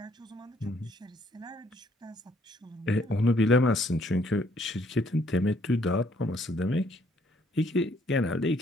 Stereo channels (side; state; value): both; normal; correlation 0.66